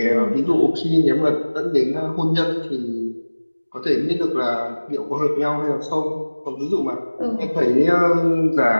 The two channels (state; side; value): inverted; both; correlation -1.00